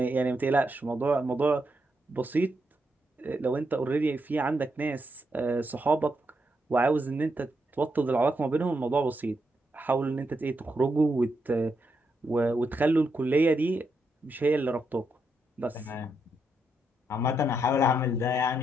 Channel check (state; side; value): normal; both; correlation 0.81